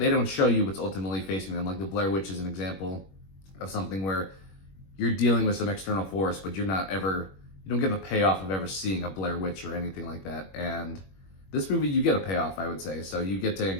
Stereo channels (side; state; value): right; late; 21 ms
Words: don't show you what's ultimately facing them. Like the Blair Witch is an example of something where you're dealing with some external force, but you're not ever you don't get the payoff of ever seeing a Blair Witch or anything like that. And this movie, you get a payoff, I would say. So you get to